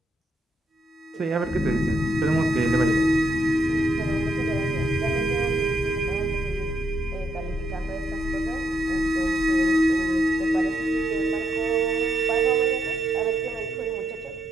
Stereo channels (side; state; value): both; normal; correlation 0.77